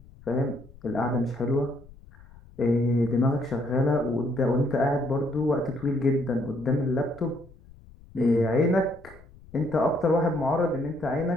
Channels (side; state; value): left; noise; rumble, 23 dB below the sound